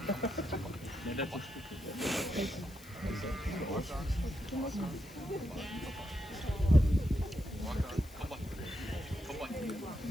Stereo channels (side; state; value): left; noise; hiss, 21 dB below the sound